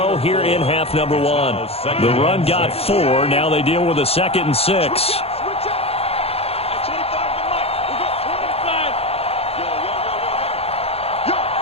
here in half number 1. The run got 4. Now they deal with a 2nd and 6.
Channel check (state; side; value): late; right; 0.29 ms